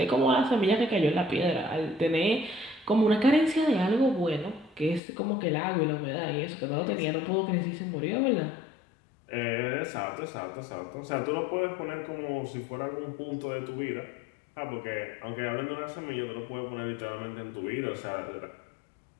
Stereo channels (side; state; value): right; drops out; at 5.0 s